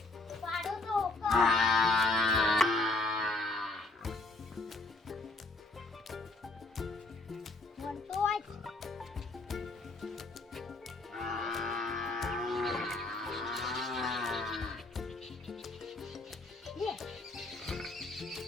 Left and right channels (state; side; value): quieter; right; 3.0 dB